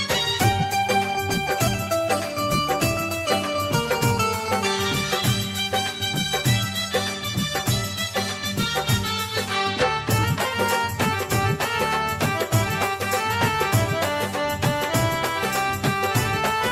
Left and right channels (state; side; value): identical; both; correlation 1.00